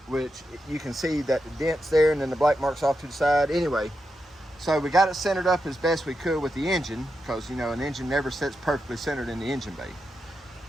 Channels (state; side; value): normal; both; correlation 0.87